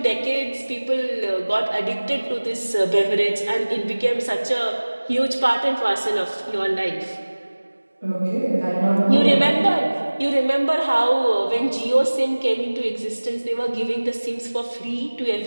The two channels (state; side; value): inverted; both; correlation -1.00